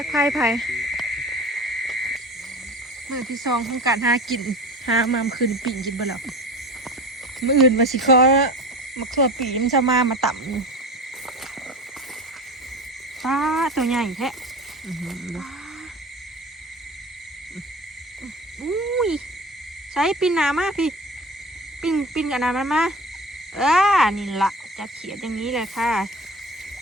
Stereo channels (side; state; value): both; normal; correlation 0.35